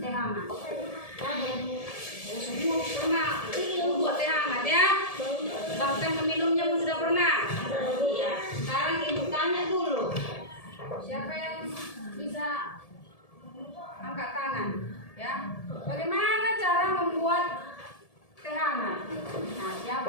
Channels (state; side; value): late; right; 1.7 ms